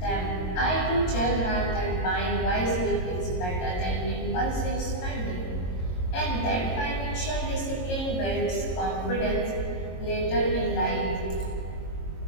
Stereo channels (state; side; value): late; right; 22 ms